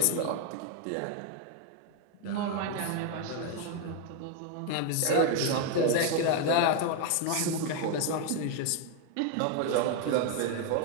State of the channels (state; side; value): different; both; correlation 0.01